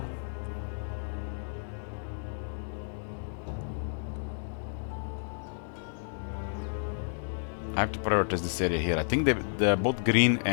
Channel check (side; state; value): right; silent; 57 dB below the other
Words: I have to prioritize this area here. I think both green